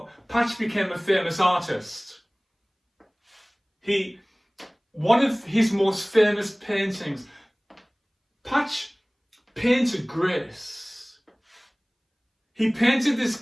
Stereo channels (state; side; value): identical; both; correlation 1.00